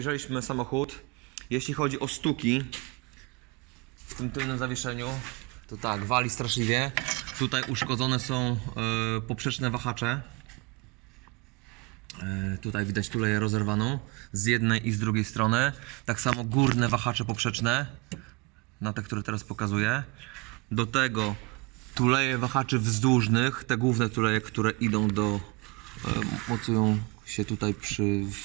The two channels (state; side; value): quieter; left; 26.6 dB